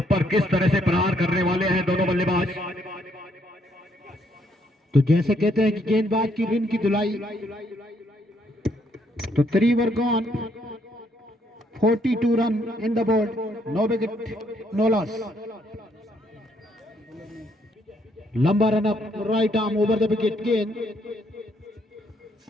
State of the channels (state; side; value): normal; both; correlation 0.71